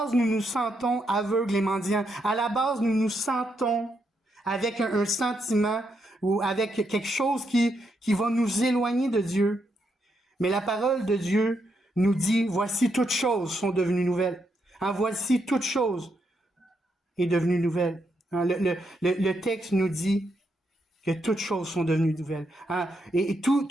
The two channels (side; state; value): both; normal; correlation 0.80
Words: nous nous sentons aveugles et mendiants. À la base, nous nous sentons avec un sentiment ou avec quelque chose qui va nous éloigner de Dieu. Mais la parole de Dieu nous dit, voici toutes choses sont devenues nouvelles. Voici toutes choses est devenue nouvelle. Le texte nous dit que toutes choses sont devenues nouvelles. Et